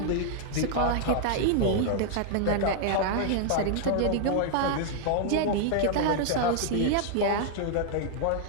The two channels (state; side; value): different; both; correlation -0.01